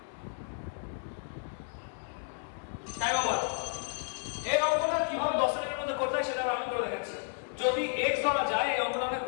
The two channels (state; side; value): silent; right; digital silence